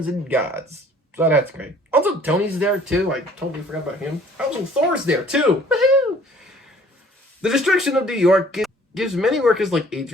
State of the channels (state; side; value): normal; both; correlation 0.55